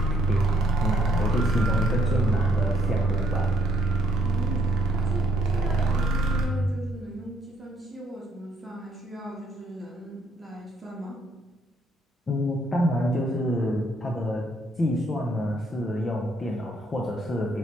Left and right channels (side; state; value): both; normal; correlation 0.70